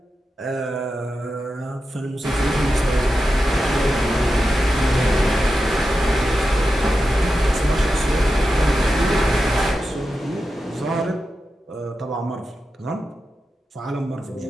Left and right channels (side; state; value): both; normal; correlation 0.90